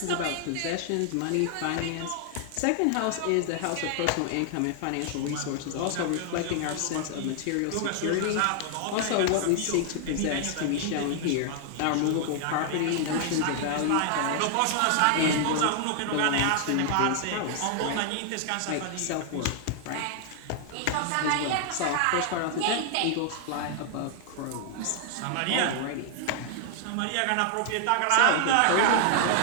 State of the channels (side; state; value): both; different; correlation 0.00